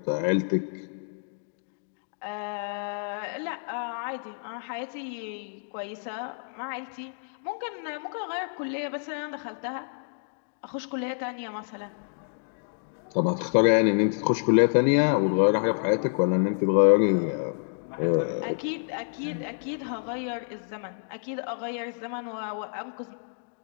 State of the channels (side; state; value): right; silent; digital silence